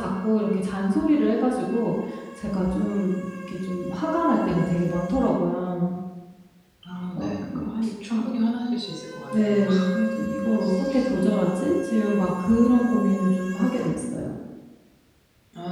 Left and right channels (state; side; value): identical; both; correlation 1.00